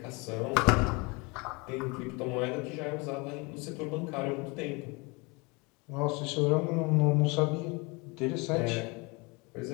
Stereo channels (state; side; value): quieter; right; 28.0 dB